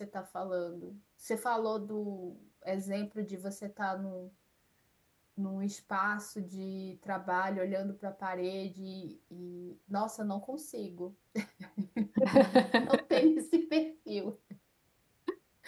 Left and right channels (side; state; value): both; identical; correlation 1.00